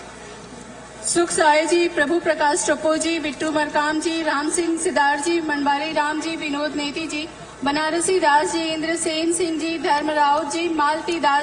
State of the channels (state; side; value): identical; both; correlation 1.00